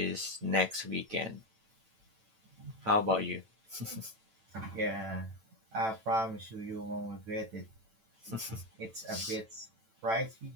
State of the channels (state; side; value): late; left; 9.0 ms